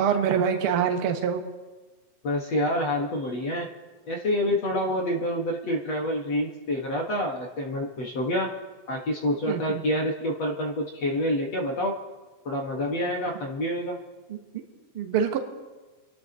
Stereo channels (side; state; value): right; late; 7.9 ms